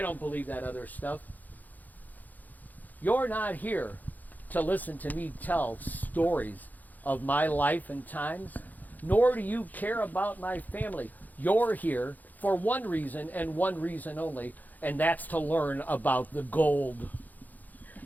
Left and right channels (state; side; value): late; right; 0.082 ms